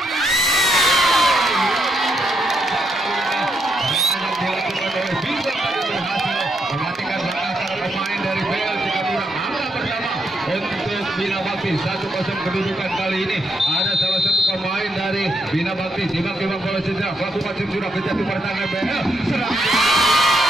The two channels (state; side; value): normal; both; correlation 0.78